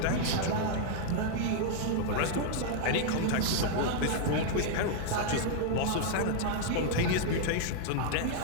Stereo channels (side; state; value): both; different; correlation 0.00